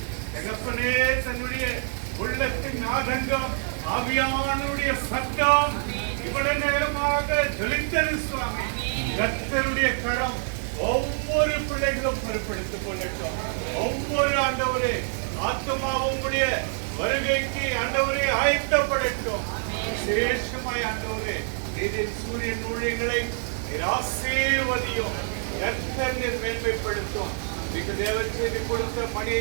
தகப்பனே தன்னுடைய உள்ளத்தின் ஆதங்கம் ஆவியானுடைய சத்தம் இவ்வளவு நேரமாக ஜொலித்தது சுவாமி. கர்த்தருடைய கரம் ஒவ்வொரு பிள்ளைகளும் பொறுப்படுத்திக் கொள்ளட்டும். ஒவ்வொரு ஆண்டவரே ஆத்மாவும் உடைய வருகைக்கு ஆண்டவரே ஆயத்தப்படட்டும். விசேஷமாய் ஆண்டவரே நீதின் சூரியன் ஊழியங்களை ஆசீர்வதியும். கர்த்தர் மேன்மைப்படுத்தும். மிக தேவன் செய்தி கொடுத்த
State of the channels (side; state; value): left; silent; 61 dB below the other